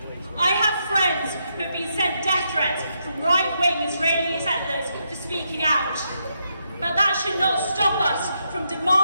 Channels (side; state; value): both; inverted; correlation -0.80